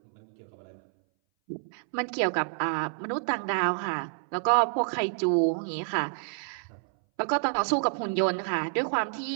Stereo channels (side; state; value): left; silent; 59 dB below the other